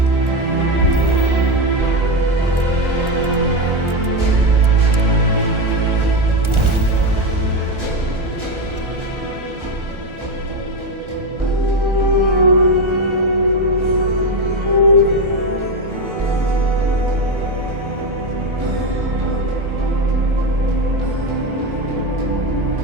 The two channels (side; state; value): left; late; 1.4 ms